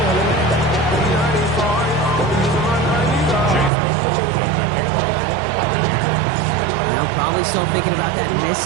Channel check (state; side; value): drops out; left; at 3.7 s